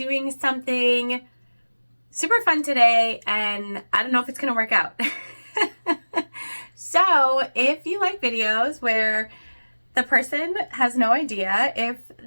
something super fun today, and I don't know if it's gonna work out. So if you like videos where the person has no idea if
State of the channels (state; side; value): inverted; both; correlation -1.00